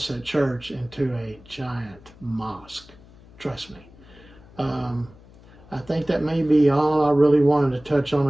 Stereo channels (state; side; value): noise; left; hum, 24 dB below the sound